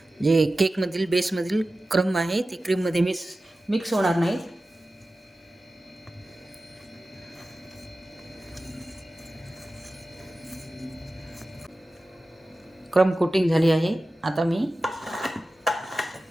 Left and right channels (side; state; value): both; normal; correlation 0.95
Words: बेसमधील क्रम आहे ती क्रीममध्ये मिक्स होणार नाही. क्रम कोटिंग झाली आहे. आता मी